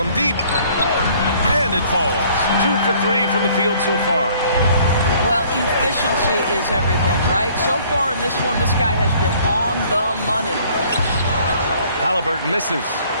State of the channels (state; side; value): inverted; both; correlation -0.58